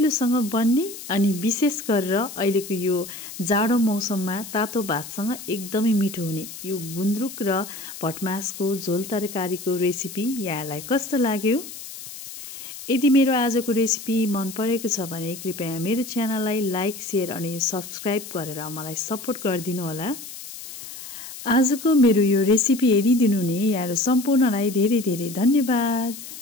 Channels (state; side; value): noise; left; hiss, 12 dB below the sound